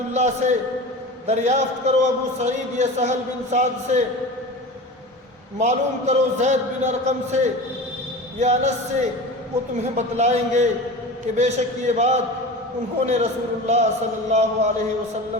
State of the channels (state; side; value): normal; both; correlation 0.32